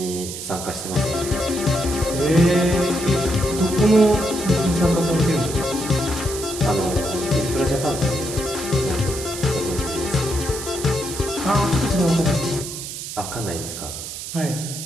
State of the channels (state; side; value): noise; right; hiss, 8 dB below the sound